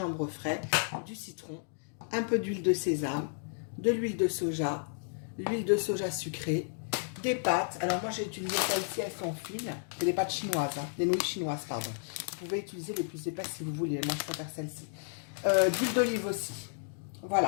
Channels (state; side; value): silent; right; digital silence